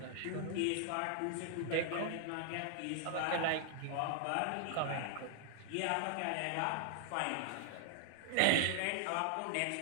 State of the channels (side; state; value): both; different; correlation 0.00